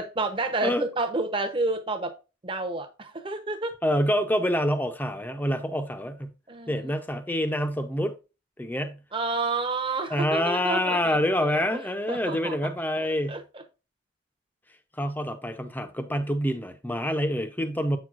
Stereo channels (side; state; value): both; normal; correlation 0.63